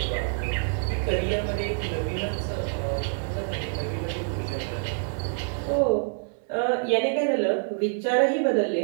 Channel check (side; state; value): left; silent; digital silence